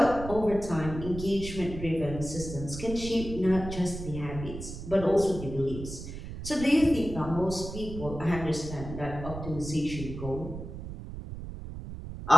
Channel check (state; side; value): noise; right; rumble, 9 dB below the sound